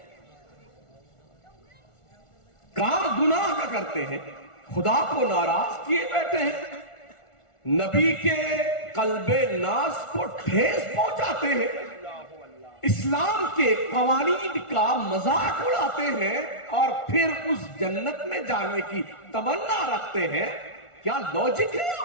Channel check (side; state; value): right; late; 1.4 ms